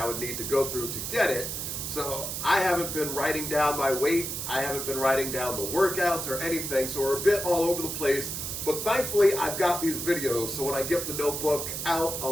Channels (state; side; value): noise; right; hiss, 4 dB below the sound